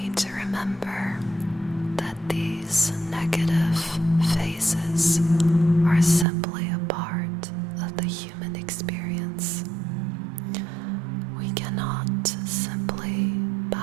to remember that these negative phases are simply a part of the human experience. We cannot simply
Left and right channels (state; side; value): drops out; left; at 6.2 s